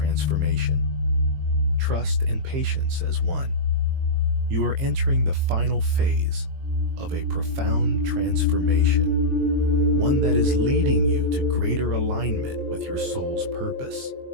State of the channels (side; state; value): left; late; 22 ms